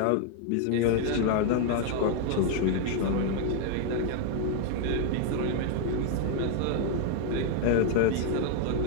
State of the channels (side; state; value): both; different; correlation 0.00